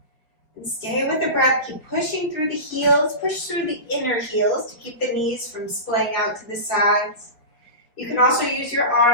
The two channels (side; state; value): right; late; 5.0 ms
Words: And stay with the breath, keep pushing through the heels, push through the inner heels to keep the knees from splaying out to the sides. You can also use your